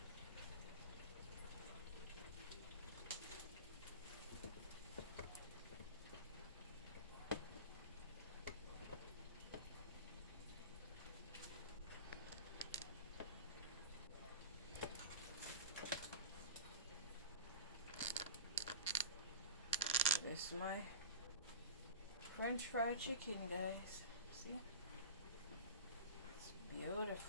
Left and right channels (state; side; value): inverted; both; correlation -0.33